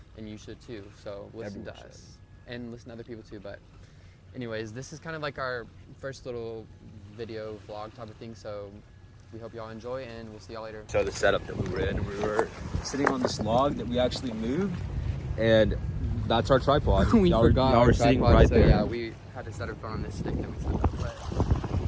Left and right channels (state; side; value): identical; both; correlation 1.00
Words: and you should too. So listen Everyone to should. us and listen to other people too. But anyways, this is kind of like our first little video vlog type of thing. So we hope y'all enjoy, and we'll see y'all later. So the setup that we were in, we were sitting on this log that we actually moved, and that's our tripod. We y'all forgot y'all our were sitting tripod, right so there. we had to set our phone on this stick that we set up.